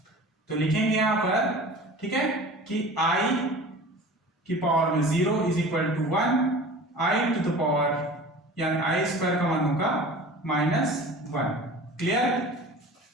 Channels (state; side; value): normal; both; correlation 0.40